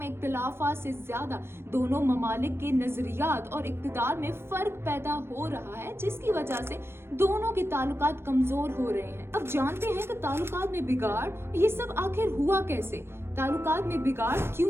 इख्तिलाफात से ज्यादा दोनों ममालिक के नजरियात और इक़्तिदार में फर्क पैदा हो रहा है, जिसकी वजह से दोनों के ताल्लुकात कमजोर हो रहे हैं। अब जानते हैं कि ताल्लुकात में बिगाड़ ये सब आखिर हुआ कैसे, ताल्लुकात में बिगाड़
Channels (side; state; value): left; late; 0.12 ms